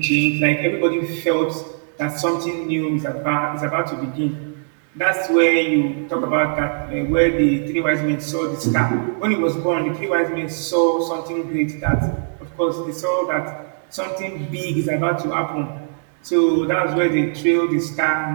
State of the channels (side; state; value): left; silent; digital silence